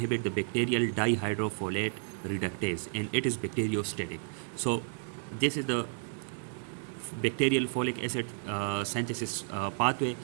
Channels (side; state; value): left; silent; 56 dB below the other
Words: the bacterial dihydrofolate reductase, and it is bacteriostatic. So this is the bacterial folic acid synthesis pathway.